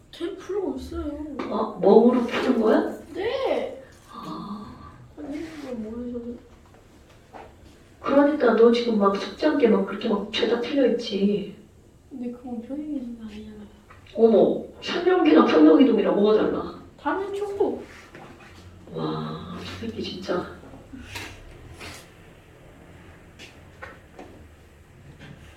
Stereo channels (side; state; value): both; identical; correlation 1.00